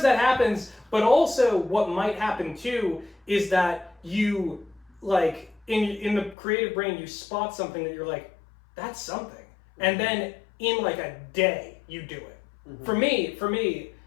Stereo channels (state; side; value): drops out; right; at 6.4 s